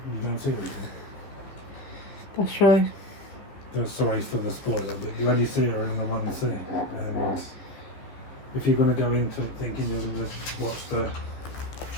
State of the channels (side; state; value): right; late; 15 ms